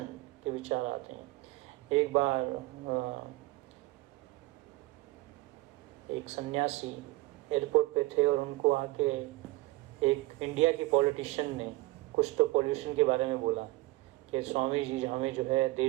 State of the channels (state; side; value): quieter; left; 20.1 dB